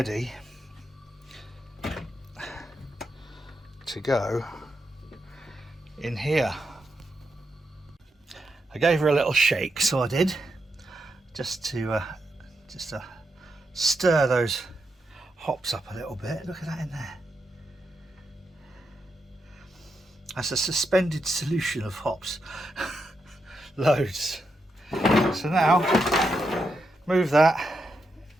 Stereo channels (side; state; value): both; normal; correlation 0.84